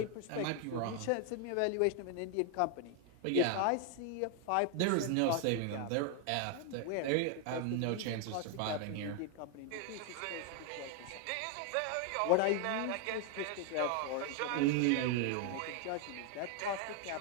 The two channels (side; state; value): both; different; correlation 0.01